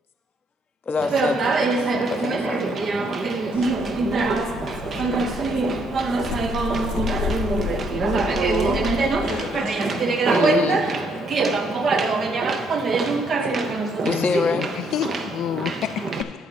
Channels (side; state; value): both; normal; correlation 0.70